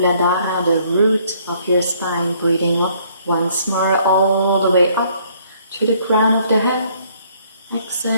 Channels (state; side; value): inverted; both; correlation -0.64